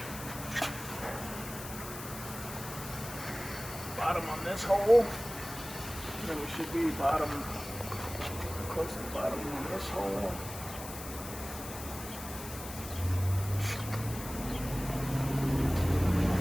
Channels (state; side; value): noise; left; hiss, 11 dB below the sound